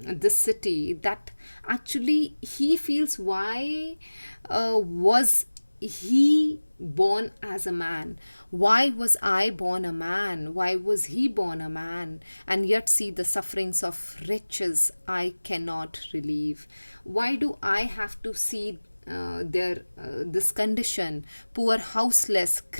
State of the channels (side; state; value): both; inverted; correlation -1.00